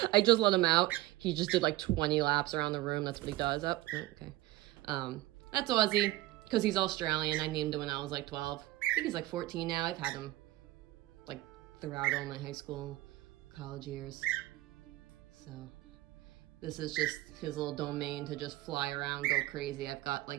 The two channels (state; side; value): quieter; left; 18.0 dB